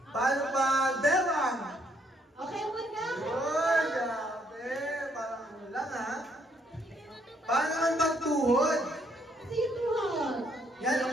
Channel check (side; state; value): both; normal; correlation 0.70